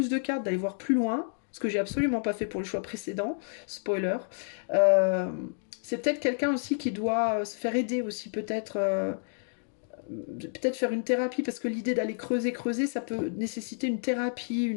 de cartes, d'aller voir plus loin, ce que j'ai absolument pas fait pour le choix précédent, spoiler, euh, c'est peut-être quelqu'un aussi qui doit se faire aider aussi, peut-être faire une thérapie, parce que l'idée d'aller creuser, ça peut nécessiter une thérapie,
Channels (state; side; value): silent; right; digital silence